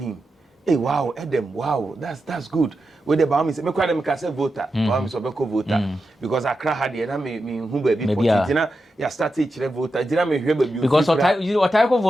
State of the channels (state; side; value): normal; both; correlation 0.89